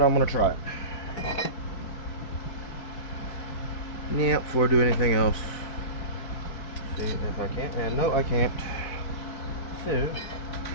I'm gonna try it. Yeah, before I do anything else. See if I can. And no, I can't. So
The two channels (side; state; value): right; late; 4.6 ms